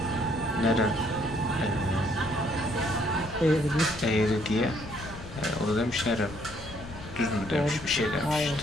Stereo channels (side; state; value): left; noise; rumble, 13 dB below the sound